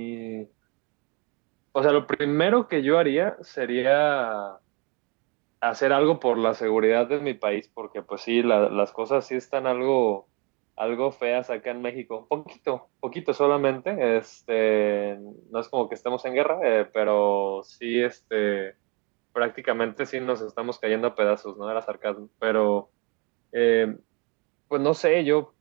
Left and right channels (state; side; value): quieter; left; 30.7 dB